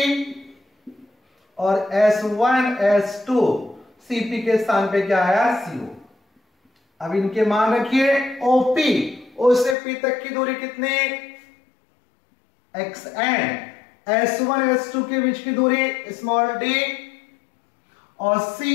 और S1 S2 CP के स्थान पे क्या आया? CO। अब इनके मान रखिए OP, O से P तक की दूरी कितनी? XN। S1 S2 के बीच की दूरी स्मॉल d और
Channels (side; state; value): right; drops out; at 9.8 s